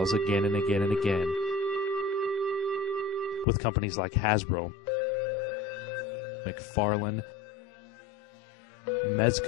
again and again and again, with companies like Hasbro, McFarlane,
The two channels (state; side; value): drops out; right; at 3.5 s